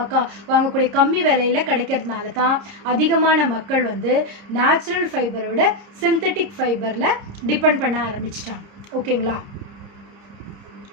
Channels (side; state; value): left; late; 30 ms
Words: வாங்கக்கூடிய கம்மி விலையில் கிடைக்கிறதுனால தான் அதிகமான மக்கள் வந்து நேச்சுரல் ஃபைபரை விட சிந்தட்டிக் ஃபைபரில் டிபெண்ட் பண்ண ஆரம்பிச்சிட்டாங்க. ஓகேங்களா?